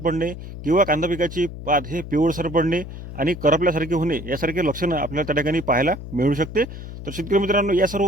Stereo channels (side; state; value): left; noise; hum, 11 dB below the sound